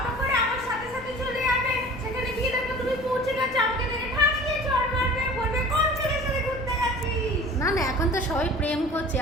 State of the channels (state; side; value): noise; left; rumble, 18 dB below the sound